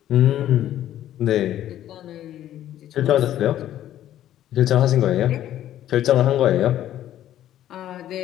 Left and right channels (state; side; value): quieter; right; 12.2 dB